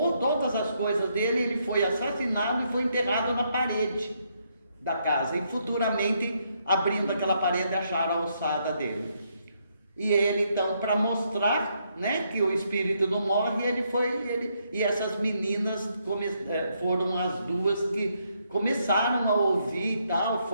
todas as coisas dele, ele foi assassinado e foi enterrado na parede da casa, e futuramente, abrindo aquela parede, acharam a alçada dele. E ele então, para mostrar, né, que o espírito não morre, e essas meninas foram as 2 que começaram a ouvir e tal,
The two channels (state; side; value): inverted; both; correlation -0.75